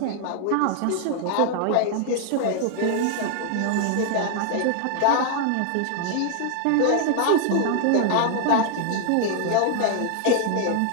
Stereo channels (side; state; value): both; different; correlation 0.00